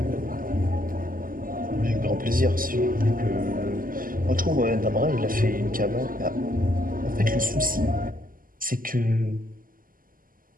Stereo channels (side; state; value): left; late; 0.41 ms